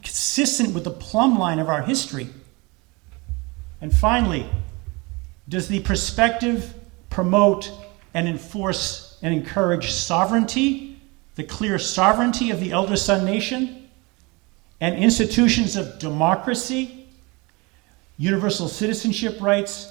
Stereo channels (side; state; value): left; quieter; 26.3 dB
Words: consistent with the plumb line of our history. And finally, does the perspective promote and enforce and encourage sovereignty, the clear sovereignty of the elder son nation, and institutions of democracy, universal citizenship rights,